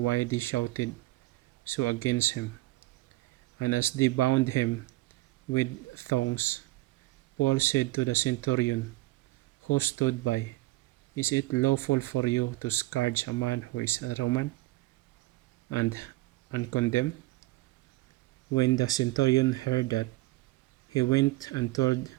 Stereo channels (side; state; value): left; quieter; 19.0 dB